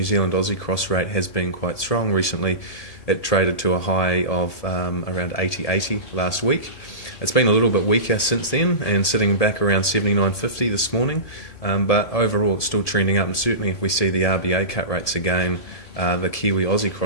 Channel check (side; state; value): right; late; 1.7 ms